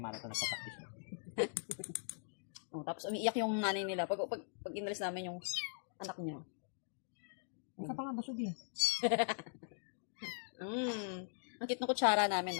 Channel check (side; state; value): right; silent; digital silence